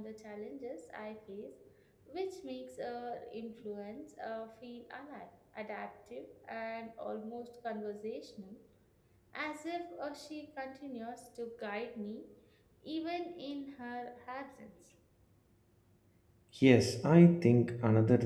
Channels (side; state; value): both; identical; correlation 1.00